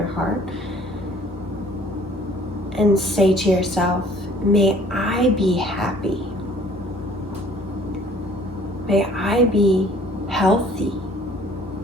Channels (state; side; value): normal; both; correlation 0.55